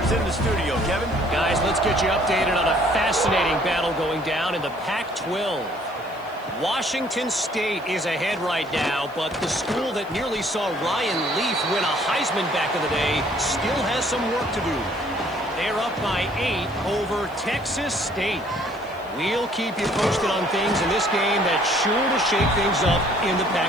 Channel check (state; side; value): noise; right; hiss, 28 dB below the sound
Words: in the studio. Kevin? Guys, let's get you updated on a fascinating battle going down in the Pac-12. Washington State is ahead right now, but the school that nearly saw Ryan Leaf win a Heisman back in the day still has some work to do. They're up by 8 over Texas State. We'll keep you posted on things in this game that's sure to shake things up in the